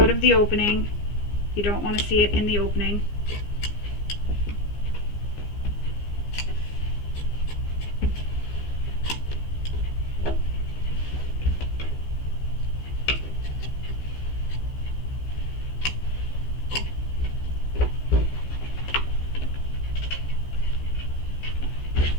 of the opening. You don't want to see it in the opening.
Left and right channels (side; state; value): right; late; 15 ms